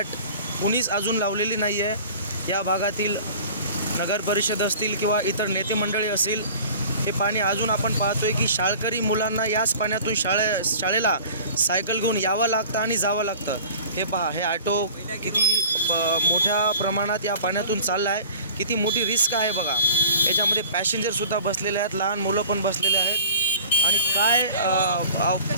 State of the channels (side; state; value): both; inverted; correlation -0.44